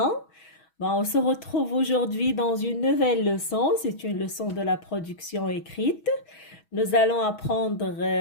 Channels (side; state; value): right; late; 6.2 ms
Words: On se retrouve aujourd'hui dans une nouvelle leçon. C'est une leçon de la production écrite. Nous allons apprendre